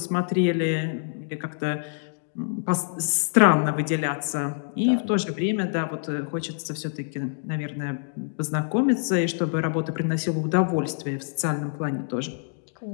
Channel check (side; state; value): right; silent; digital silence